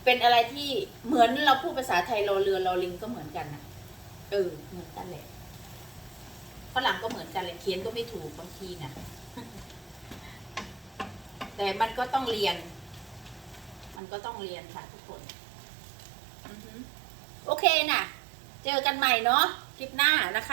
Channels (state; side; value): drops out; left; at 14.0 s